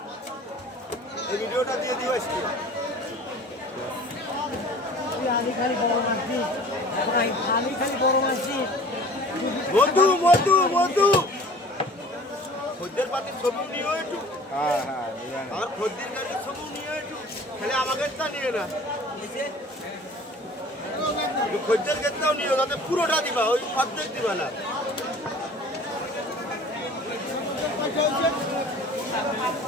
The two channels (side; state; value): both; normal; correlation 0.46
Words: এই ভিডিওটা দিয়ে দিও আজকে খালি বড় মাছি মধু মধু মধু খদ্দের পাতি ছবি নিও একটু আমার খদ্দের গাড়ির ছবি নিও একটু খালি আমাকে তা নিয়ে না খদ্দের ক্ষেত্রেও নিও তাতে পুরোটা দিবা ওই অর্ধেক দিবা না